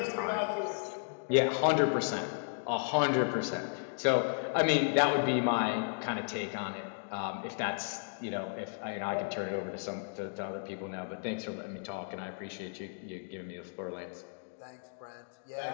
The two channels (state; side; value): silent; right; digital silence